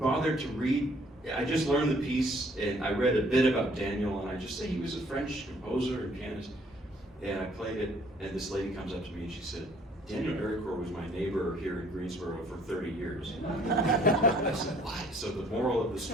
to read. I just learned the piece, and I read a bit about Daniel, and I just say he was a French composer and pianist. And I played it, and this lady comes up to me and she said, Daniel Ericourt was my neighbor here in Greensboro for 30 years. I said, what? So the moral of the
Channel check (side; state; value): both; normal; correlation 0.60